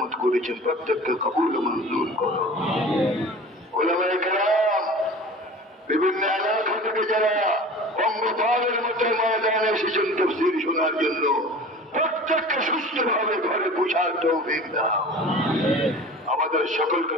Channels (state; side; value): normal; both; correlation 0.39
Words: করেছেন, প্রত্যেককে কবুল মঞ্জুর করো। উলামায়ে কেরাম, বিভিন্ন এলাকা থেকে যারা অঙ্গপালের মতো ময়দানে এসেছেন তাফসীর শোনার জন্য, প্রত্যেককে সুস্থভাবে ঘরে পৌঁছার তৌফিক দাও। আমাদের সকলকে